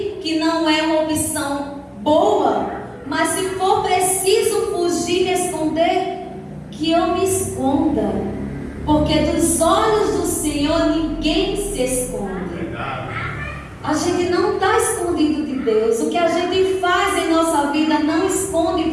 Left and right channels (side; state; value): both; identical; correlation 1.00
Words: que não é uma opção boa, mas se for preciso fugir e esconder, que eu me esconda. Porque dos olhos do Senhor ninguém se esconde. A gente não está escondido de Deus. O que a gente faz em nossa vida não esconde